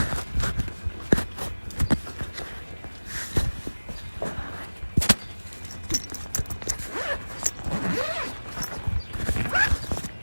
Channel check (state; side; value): inverted; both; correlation -1.00